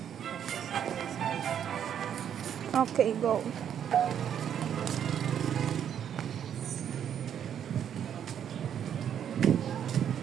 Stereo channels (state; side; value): quieter; left; 9.1 dB